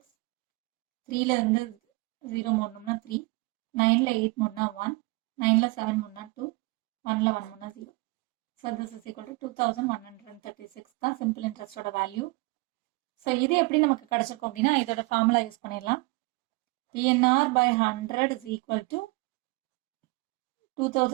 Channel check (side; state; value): left; quieter; 25.7 dB